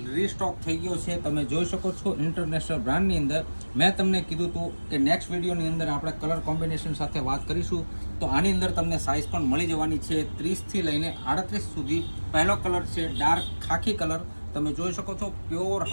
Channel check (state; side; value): inverted; both; correlation -1.00